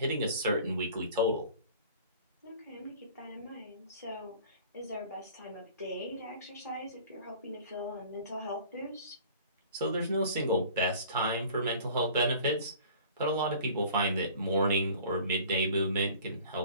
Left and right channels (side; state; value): both; inverted; correlation -0.47